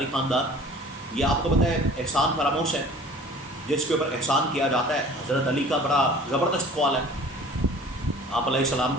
ख़ानदान, ये आपको पता है एहसान फरामोश है, जिसके ऊपर एहसान किया जाता है। हज़रत अली का बड़ा ज़बरदस्त कौल है आप अलैहिस्सलाम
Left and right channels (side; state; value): both; normal; correlation 0.47